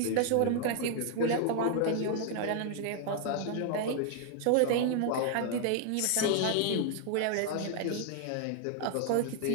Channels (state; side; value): different; both; correlation 0.00